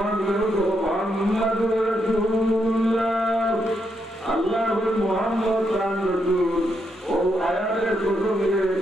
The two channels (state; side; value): normal; both; correlation 0.80